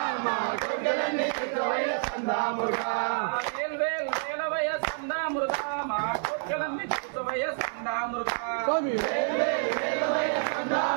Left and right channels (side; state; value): left; silent; 59 dB below the other